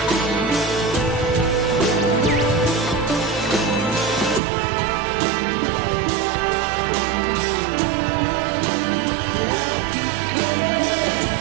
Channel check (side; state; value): left; drops out; at 4.4 s